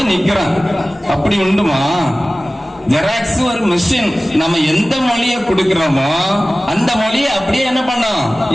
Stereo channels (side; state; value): both; normal; correlation 0.97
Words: நிக்கிறோம். அப்படி உண்டுமா? ஜெராக்ஸ் ஒரு மிஷின். நம்ம எந்த மொழியை கொடுக்கிறோமோ அந்த மொழியை அப்படியே என்ன பண்ணோம்,